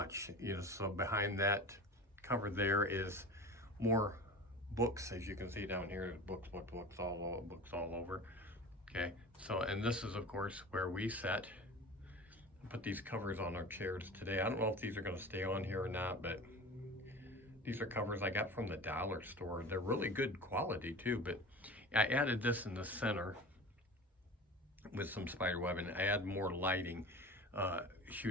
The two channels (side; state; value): both; normal; correlation 0.35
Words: you know. So behind that cover there is more books, as you can see down here. Books all over. Okay. So, and this is of course where we put these covers on our chairs today. I don't know if these are going to stay on here or not, but these are covers I got from the dollar store. They're really good quality too. But I added this in the center with some spider web, and I add more lighting